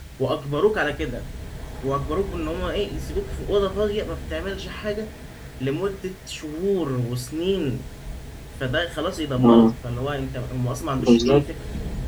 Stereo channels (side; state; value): both; identical; correlation 1.00